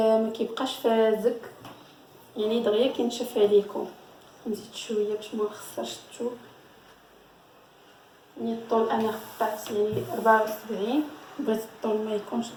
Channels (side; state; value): both; identical; correlation 1.00